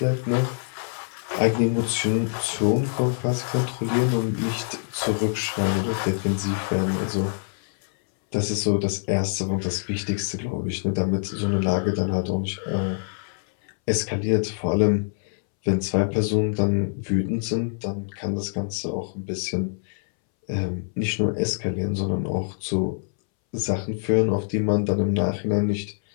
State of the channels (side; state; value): right; silent; 62 dB below the other